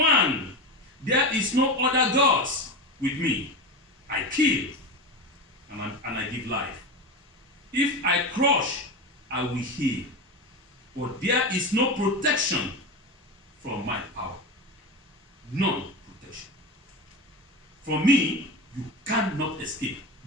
one. There is no other gods with me. I kill and I give life. If I crush, I will heal. But there is no protection from my power. None protection. From me, you cannot escape.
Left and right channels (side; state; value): both; normal; correlation 0.22